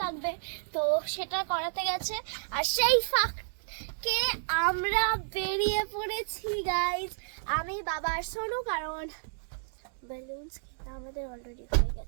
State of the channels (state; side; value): silent; left; digital silence